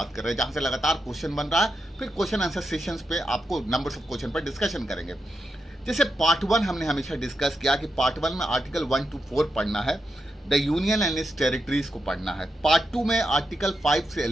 कर रहे हैं, जहां से लगातार क्वेश्चन बन रहा है। फिर क्वेश्चन आंसर सेशंस पे आपको नंबर्स ऑफ क्वेश्चन पर डिस्कशन करेंगे। जैसे पार्ट 1 हमने हमेशा डिस्कस किया कि पार्ट 1 में आर्टिकल 1 to 4 पढ़ना है, the union and it's territories को पढ़ना है। पार्ट 2 में आर्टिकल 5 से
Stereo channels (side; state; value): both; normal; correlation 0.86